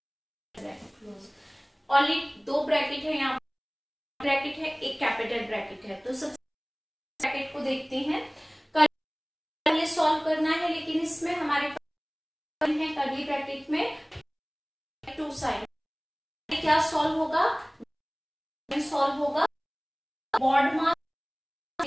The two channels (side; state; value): both; identical; correlation 1.00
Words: close. Only 2 bracket है यहाँ, ब्रैकेट है एक कैपिटल ब्रैकेट है। तो सबसे ब्रैकेट को देखते हैं, पहले सॉल्व करना है, लेकिन इसमें हमारे पास है कर्ली ब्रैकेट में 2 साइड। क्या सॉल्व होगा, सॉल्व होगा बॉड मास